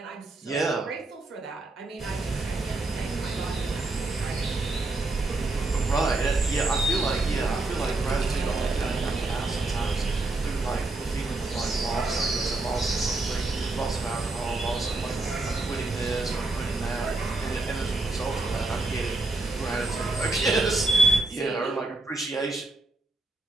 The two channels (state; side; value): quieter; left; 3.1 dB